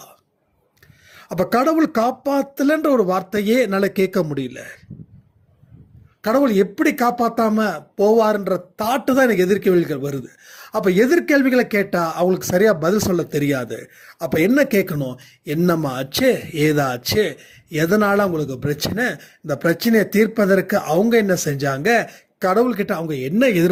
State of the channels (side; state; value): both; identical; correlation 1.00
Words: அப்ப கடவுள் காப்பாத்தலன்ற ஒரு வார்த்தையே என்னால கேட்க முடியல. கடவுள் எப்படி காப்பாத்தாம போவார்ன்ற தாட்டு தான் எனக்கு எதிர்கேள்விகள் வருது. அப்ப எதிர்கேள்விகளை கேட்டா அவங்களுக்கு சரியா பதில் சொல்ல தெரியாது. அப்ப என்ன கேட்கணும்? என்னம்மா ஆச்சு, ஏதாச்சு, எதனால அவங்களுக்கு பிரச்சனை, இந்த பிரச்சனையை தீர்ப்பதற்கு அவங்க என்ன செஞ்சாங்க, கடவுள்கிட்ட அவங்க என்ன